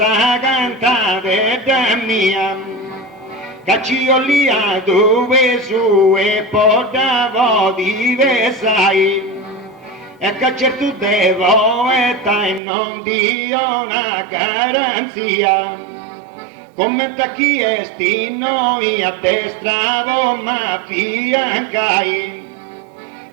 cantare da mia, caccio lì a dove su e portavo di vesai, e caccerto devo e tai non dio una garanzia, come tacchi esti noi a destra ma fiancai.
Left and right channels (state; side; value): drops out; left; at 12.6 s